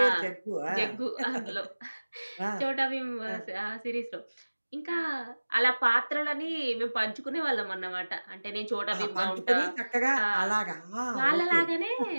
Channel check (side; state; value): both; inverted; correlation -1.00